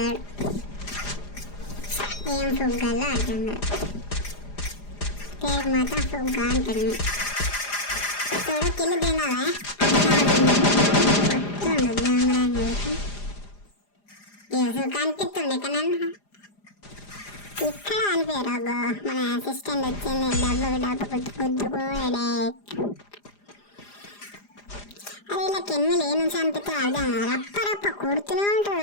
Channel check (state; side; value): late; right; 4.9 ms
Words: ఏం ఫుగ్గాలో అర్థం కాదు. పేరు మాత్రం ఫుగ్గా అంటాడు. చూడు కిల్లు తినాలా పొత్తుండు దొంగరానికి కనిపిస్తుండే కానీ ఇక్కడ అనిపోయారు. అగో మన అసిస్టెంట్ వచ్చింది డబ్బు గుద్దుకోడే. అదే ఇలా కెన్నులు ఏ నుంచి అనిపిస్తే అర్థం రప్ప కొడుతూనే